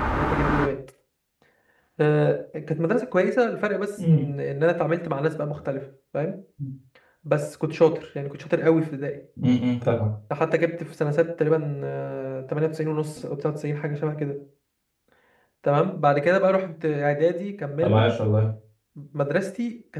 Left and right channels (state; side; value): identical; both; correlation 1.00